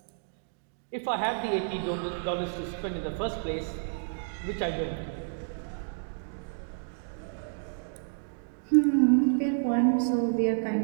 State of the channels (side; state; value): left; silent; digital silence